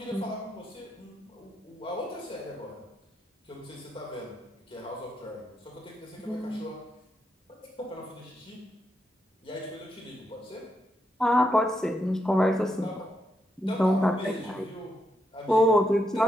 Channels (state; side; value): normal; both; correlation 0.81